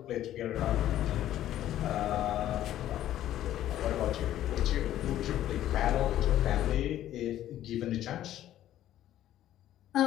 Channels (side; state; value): right; quieter; 12.6 dB